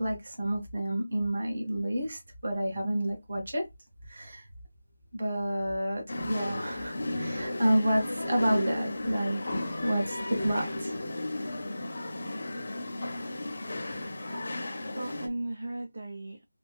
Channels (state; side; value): inverted; both; correlation -0.95